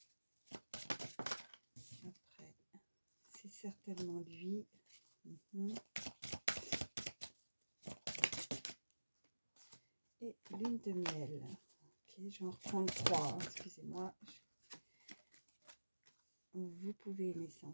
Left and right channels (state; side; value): inverted; both; correlation -1.00